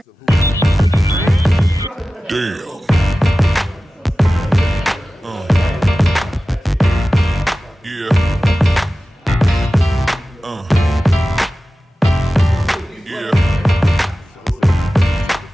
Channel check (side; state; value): both; normal; correlation 0.95